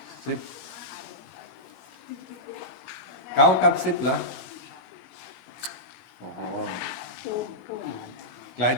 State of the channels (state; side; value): late; right; 16 ms